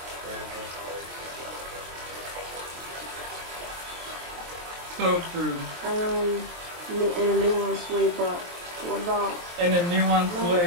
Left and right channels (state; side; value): late; left; 23 ms